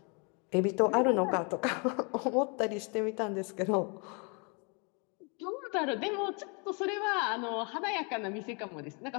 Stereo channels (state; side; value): quieter; right; 34.0 dB